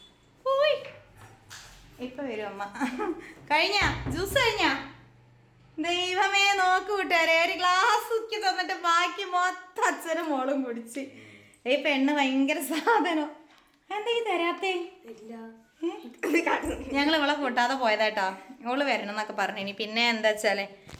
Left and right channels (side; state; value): both; identical; correlation 1.00